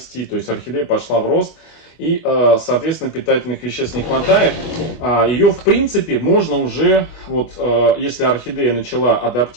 то есть орхидея пошла в рост. И, соответственно, питательных веществ не хватает. Ее, в принципе, можно уже, вот, если орхидея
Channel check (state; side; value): late; right; 25 ms